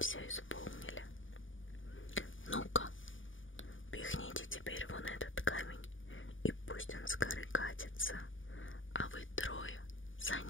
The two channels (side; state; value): right; late; 0.57 ms